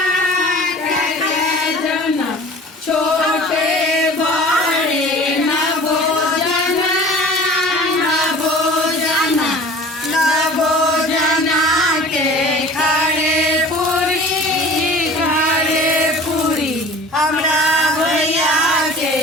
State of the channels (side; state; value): both; normal; correlation 0.43